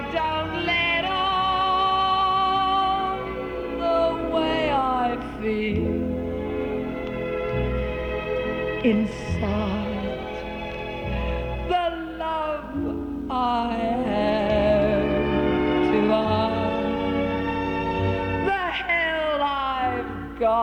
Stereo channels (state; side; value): identical; both; correlation 1.00